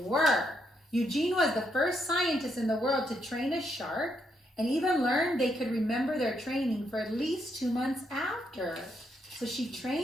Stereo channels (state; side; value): normal; both; correlation 0.77